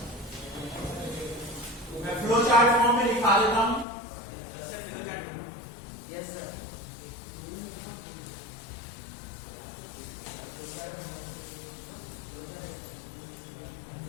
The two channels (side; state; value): right; drops out; at 3.9 s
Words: मैं फ्लो चार्ट फॉर्म में लिखा देता हूं।